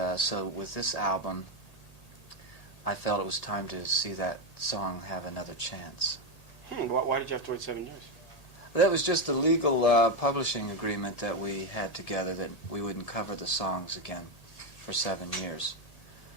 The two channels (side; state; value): right; late; 1.7 ms